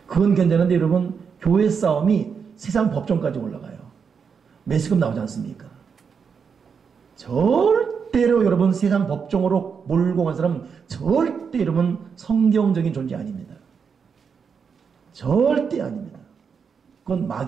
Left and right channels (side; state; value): left; quieter; 6.2 dB